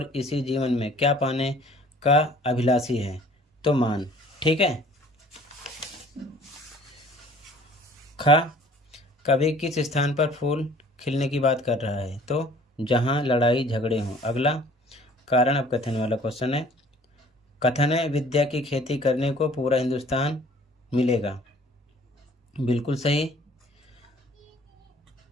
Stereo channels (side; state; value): both; normal; correlation 0.52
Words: इसी जीवन में क्या पाने का अभिलाषी है, तो मान, ठीक है। खा, कवि किस स्थान पर फूल खिलने की बात कर रहा है, तो जहां लड़ाई झगड़े हों। अगला, कारण अब कथन वाला क्वेश्चन है। कथन है विद्या की खेती करने को पूरा हिंदुस्तान मिलेगा, बिल्कुल सही।